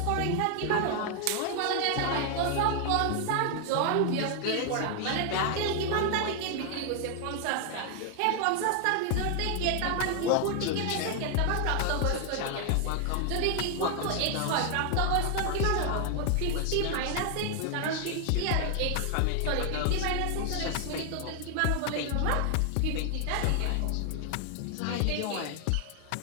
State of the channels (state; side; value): different; both; correlation 0.00